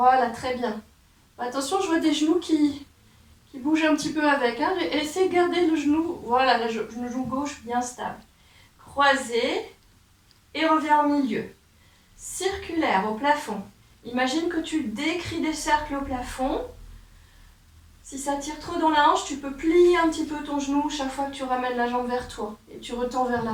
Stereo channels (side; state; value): both; identical; correlation 1.00